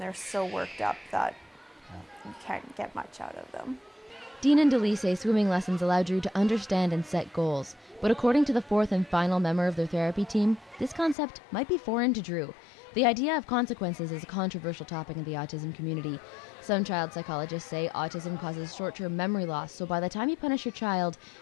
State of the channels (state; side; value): drops out; right; at 11.2 s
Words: they're so worked up that you can't get much out of them. Dean and Delee say swimming lessons allow Drew to understand and set goals. But according to the fourth and final member of their therapy team, this concept might be foreign to Drew. The idea of consequences is a controversial topic in the autism community. Some child psychologists say autism causes short-term memory loss, so by the time you punish your child,